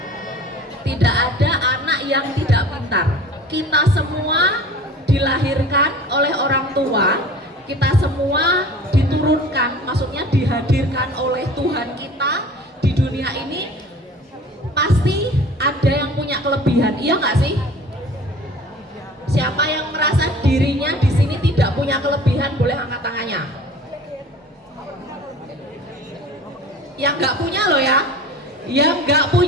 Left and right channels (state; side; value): normal; both; correlation 0.43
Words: Tidak ada anak yang tidak pintar. Kita semua dilahirkan oleh orang tua, kita semua diturunkan, maksudnya dihadirkan oleh Tuhan kita di dunia ini. Pasti ada yang punya kelebihan, iya nggak sih? Siapa yang merasa dirinya di sini tidak punya kelebihan boleh angkat tangannya. Yang nggak punya loh ya, yang nggak